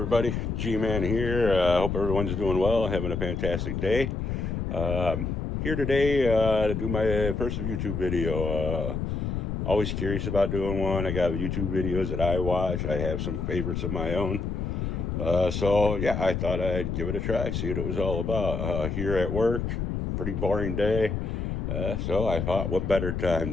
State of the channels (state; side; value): noise; left; rumble, 2 dB below the sound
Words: G-Man here. Hope everyone's doing well, having a fantastic day. Um, Here today to do my first YouTube video. Always curious about doing one. I got YouTube videos that I watch. I have some favorites of my own. So, yeah, I thought I'd give it a try, see what it was all about. Here at work, pretty boring day. So I thought, what better